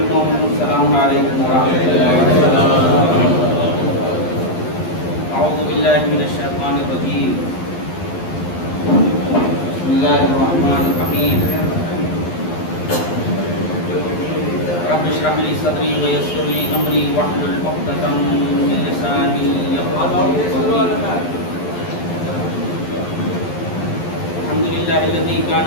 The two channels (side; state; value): right; late; 11 ms